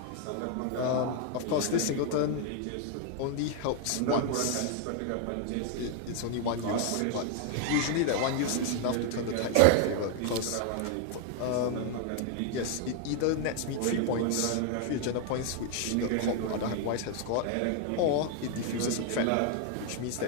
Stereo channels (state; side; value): different; both; correlation 0.01